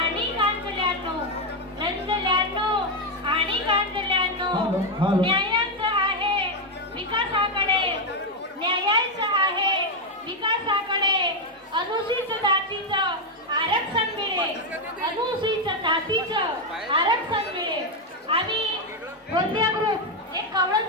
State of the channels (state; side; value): normal; both; correlation 0.03